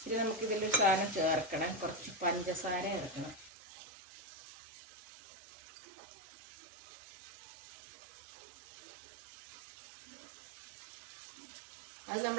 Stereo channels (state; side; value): drops out; left; at 3.5 s